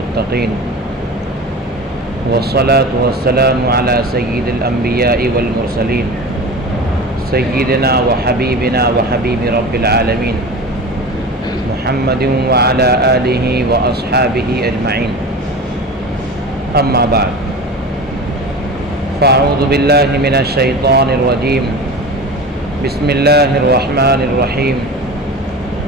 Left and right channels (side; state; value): both; normal; correlation 0.32